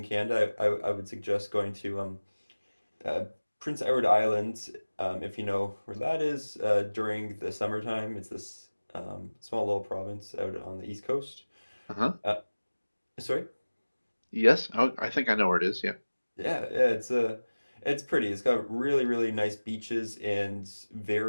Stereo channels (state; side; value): inverted; both; correlation -1.00